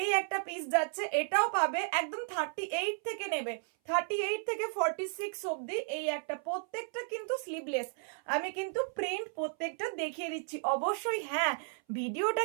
একটা পিস যাচ্ছে, এটাও পাবে একদম 38 থেকে নেবে, 38 থেকে 46 অবধি। এই একটা, প্রত্যেকটা কিন্তু স্লিভলেস। আমি কিন্তু প্রিন্ট প্রত্যেকটা দেখিয়ে দিচ্ছি। অবশ্যই হ্যাঁ, ভিডিওটা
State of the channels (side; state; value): left; silent; 55 dB below the other